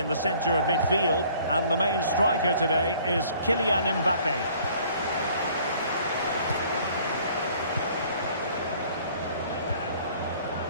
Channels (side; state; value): both; inverted; correlation -0.56